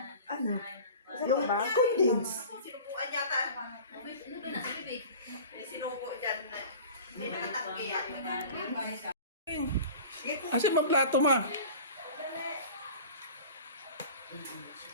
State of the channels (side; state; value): both; inverted; correlation -0.39